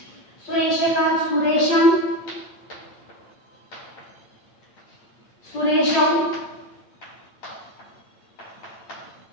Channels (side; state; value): right; late; 8.7 ms